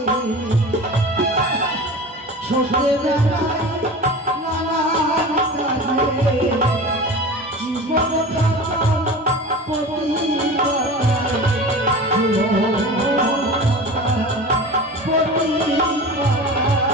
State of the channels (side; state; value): both; normal; correlation 0.34